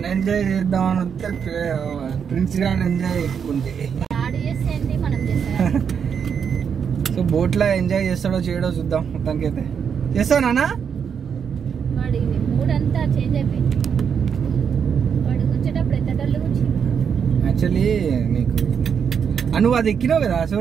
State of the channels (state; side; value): quieter; left; 7.1 dB